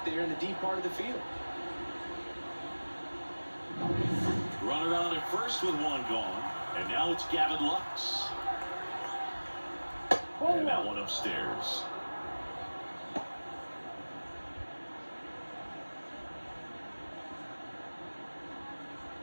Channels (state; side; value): inverted; both; correlation -1.00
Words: there in the deep part of the field. Runner on at first with 1 gone. And now it's Gavin Lux. And that one upstairs.